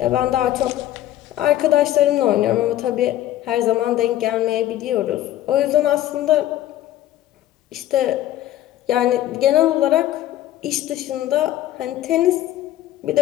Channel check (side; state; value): right; quieter; 13.2 dB